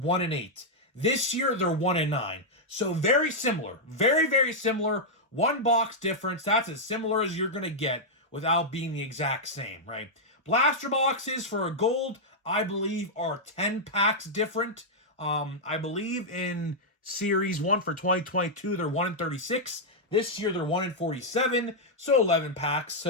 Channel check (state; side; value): normal; both; correlation -0.05